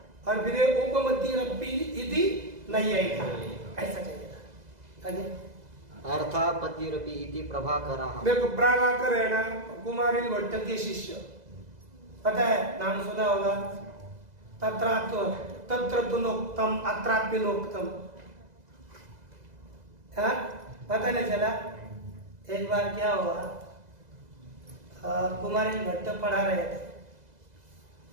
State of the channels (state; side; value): late; left; 2.0 ms